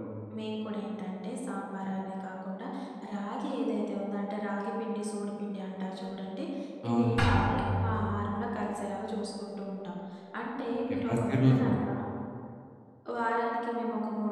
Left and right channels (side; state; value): both; identical; correlation 1.00